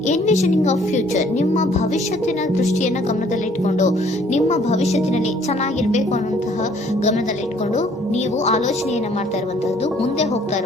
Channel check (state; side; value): normal; both; correlation 0.60